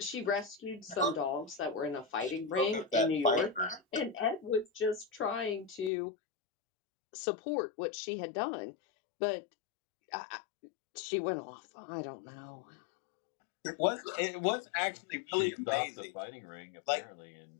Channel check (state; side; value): drops out; right; at 5.9 s